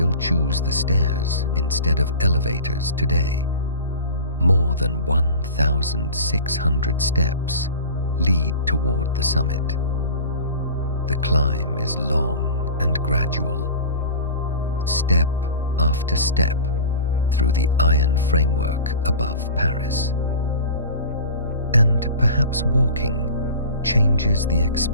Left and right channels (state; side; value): inverted; both; correlation -0.36